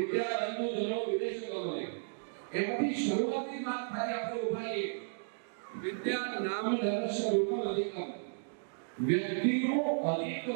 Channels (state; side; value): silent; left; digital silence